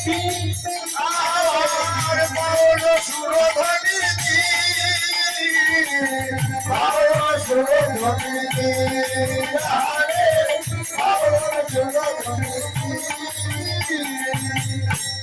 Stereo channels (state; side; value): identical; both; correlation 1.00